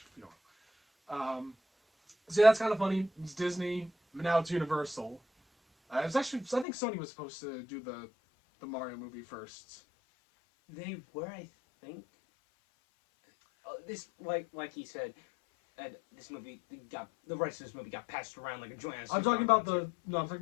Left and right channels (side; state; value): right; drops out; at 6.7 s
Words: So that's kind of funny. It's Disney, but now it's Universal. It's actually, I think Sony was supposed to do the Mario movie first. They were, I think. This, like he said, this movie the rights to this movie got passed around like a joint. I'm talking about the